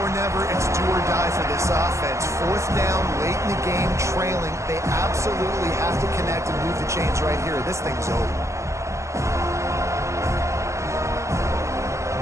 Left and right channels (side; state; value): left; late; 0.14 ms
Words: never. It's do or die for this offense. Fourth down, late in the game, trailing. They absolutely have to connect and move the chains right here. This thing's over.